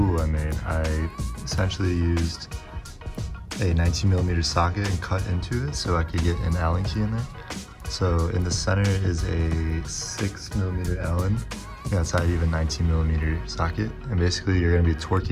I made. I essentially used a 19mm socket and cut into it so I could get an Allen key in there. So in the center is a 6mm Allen. Outside you have a 19mm socket, and basically you're going to be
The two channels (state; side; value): identical; both; correlation 1.00